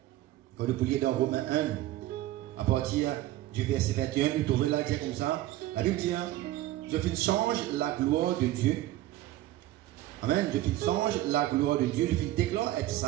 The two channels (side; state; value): left; quieter; 15.1 dB